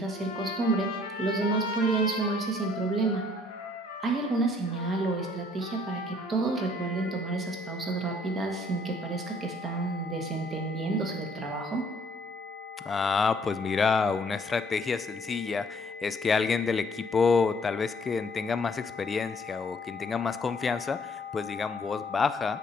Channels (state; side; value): normal; both; correlation 0.61